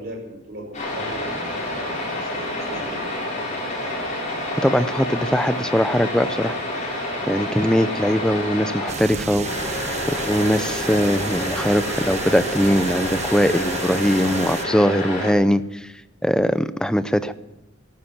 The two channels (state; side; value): normal; both; correlation 0.75